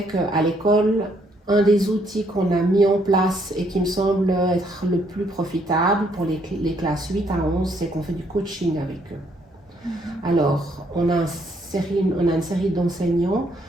qu'à l'école, un des outils qu'on a mis en place et qui me semble être le plus profitable pour les classes 8 à 11, c'est qu'on fait du coaching avec eux. Alors, on a une série d'enseignants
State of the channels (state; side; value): normal; both; correlation 0.70